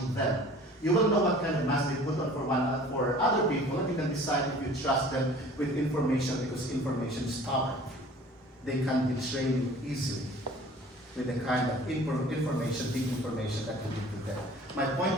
them. You will know what kind of mask they put on for other people, and you can decide if you trust them with information, because information is power. They can betray you easily with the kind of information, big information that you give to them. My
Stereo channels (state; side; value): normal; both; correlation 0.47